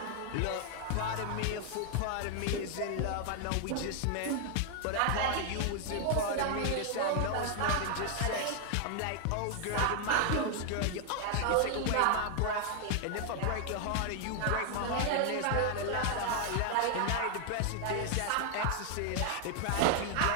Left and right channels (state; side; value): different; both; correlation 0.00